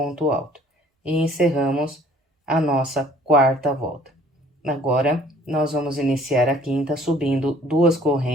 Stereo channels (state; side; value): normal; both; correlation 0.55